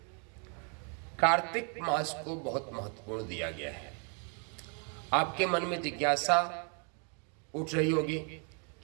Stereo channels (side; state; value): left; quieter; 38.6 dB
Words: कार्तिक मास को बहुत महत्वपूर्ण दिया गया है। आपके मन में जिज्ञासा उठ रही होगी